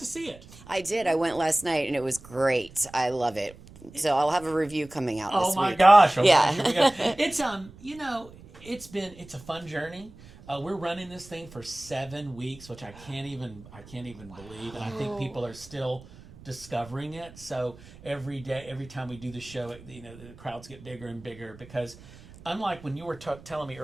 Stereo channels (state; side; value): noise; right; rumble, 20 dB below the sound